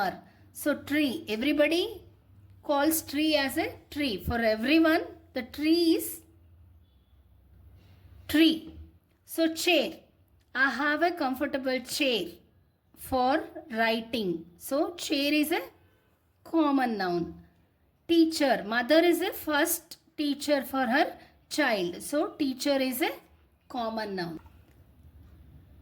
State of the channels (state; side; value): identical; both; correlation 1.00